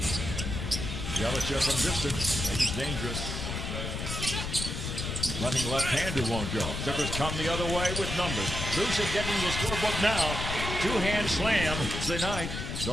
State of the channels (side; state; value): left; noise; rumble, 4 dB below the sound